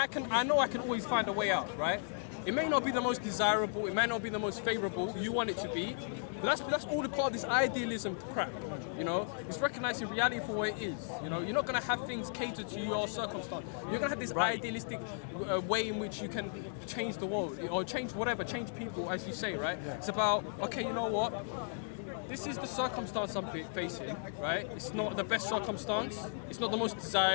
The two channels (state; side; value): silent; right; digital silence